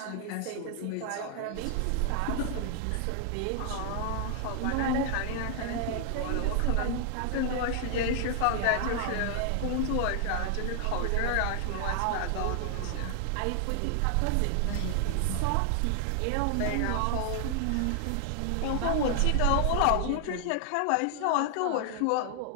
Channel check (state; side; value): different; both; correlation 0.00